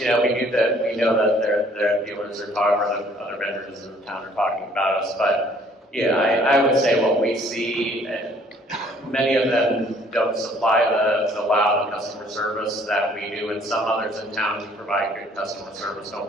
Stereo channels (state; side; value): normal; both; correlation 0.59